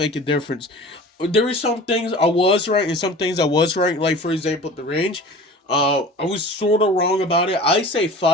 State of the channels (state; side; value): normal; both; correlation 0.40